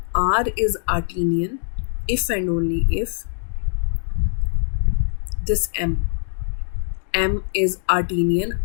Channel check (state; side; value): silent; right; digital silence